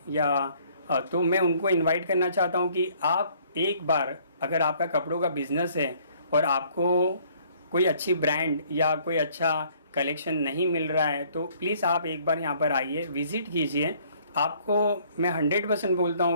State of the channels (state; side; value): inverted; both; correlation -0.60